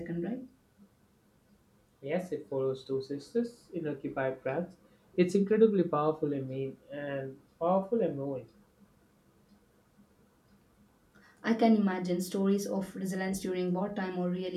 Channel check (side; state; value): both; identical; correlation 1.00